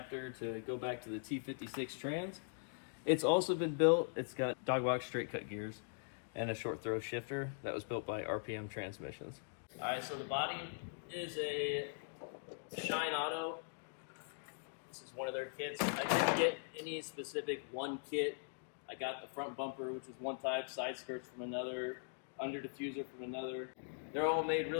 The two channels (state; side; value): silent; right; digital silence